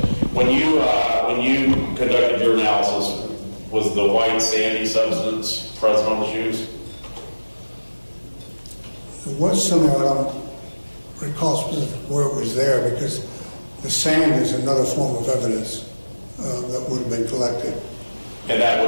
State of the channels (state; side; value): inverted; both; correlation -1.00